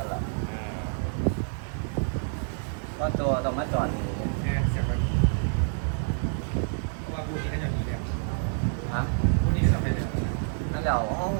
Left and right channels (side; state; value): left; silent; 59 dB below the other